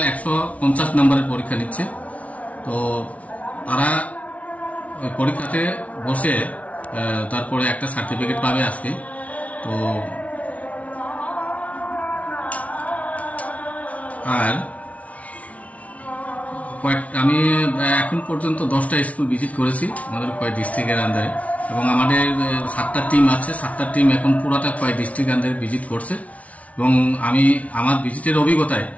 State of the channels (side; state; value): right; late; 0.067 ms